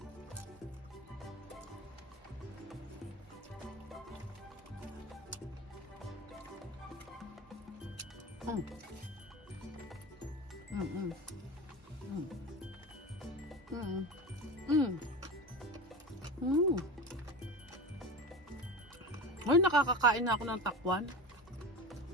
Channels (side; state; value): both; normal; correlation 0.29